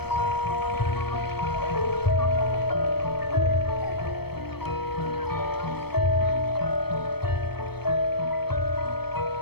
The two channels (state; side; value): late; right; 0.97 ms